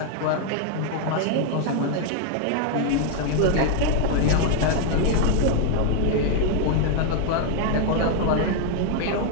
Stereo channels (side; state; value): both; different; correlation 0.00